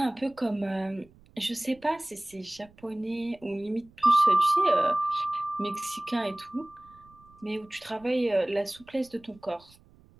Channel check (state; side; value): noise; right; rumble, 27 dB below the sound